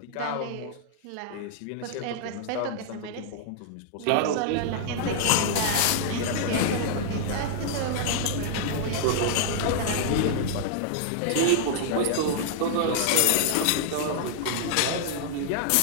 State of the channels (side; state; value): both; different; correlation -0.01